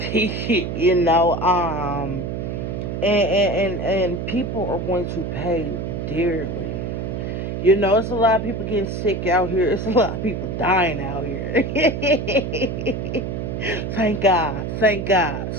And people are going to pay dearly. It's a lot of people getting sick out here. It's a lot of people dying out here. Thank God. Thank God.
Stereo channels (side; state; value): right; noise; hum, 4 dB below the sound